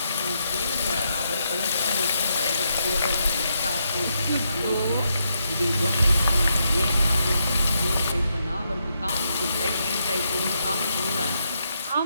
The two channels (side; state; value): both; inverted; correlation -0.80